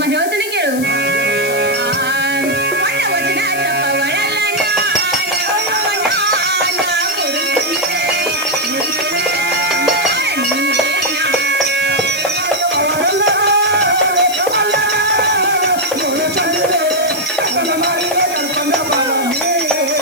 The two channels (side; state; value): left; noise; hiss, 11 dB below the sound